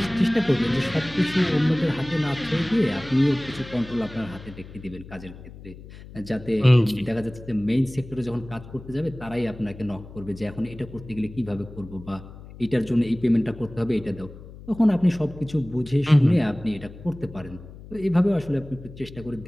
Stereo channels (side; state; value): left; noise; hum, 16 dB below the sound